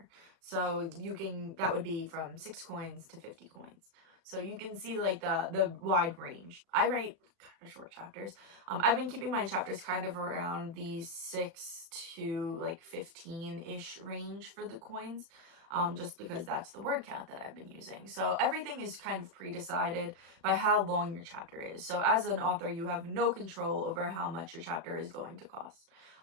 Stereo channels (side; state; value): left; late; 36 ms